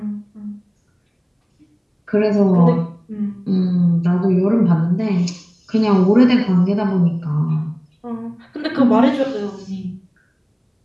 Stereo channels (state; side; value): identical; both; correlation 1.00